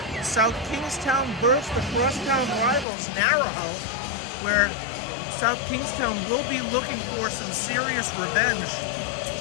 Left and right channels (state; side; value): drops out; right; at 2.9 s